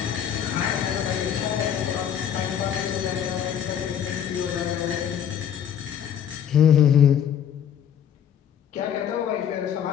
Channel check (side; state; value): right; quieter; 9.1 dB